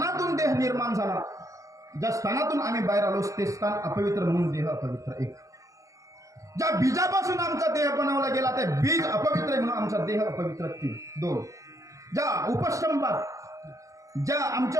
देह निर्माण झाला, ज्या स्थानातून आम्ही बाहेर आलो ते स्थान अपवित्र म्हणून देह अपवित्र एक. ज्या बीजापासून आमचा देह बनवला गेला ते बीज अपवित्र आहे म्हणून आमचा देह अपवित्र तीन दोन. ज्या उपस्तंभात ज्या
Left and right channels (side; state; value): left; late; 0.16 ms